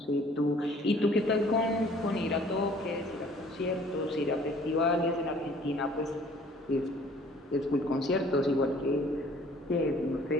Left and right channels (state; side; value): normal; both; correlation 0.54